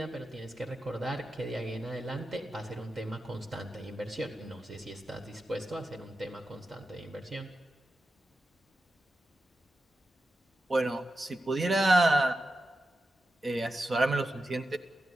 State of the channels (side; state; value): both; normal; correlation 0.91